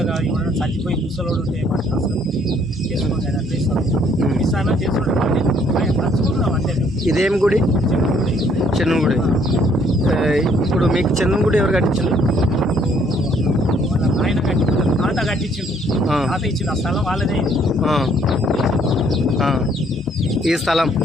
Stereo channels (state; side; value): normal; both; correlation 0.64